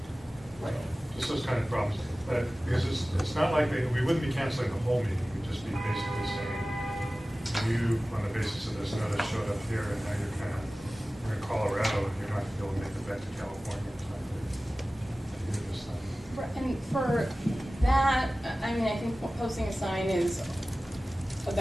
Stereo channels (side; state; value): both; normal; correlation 0.97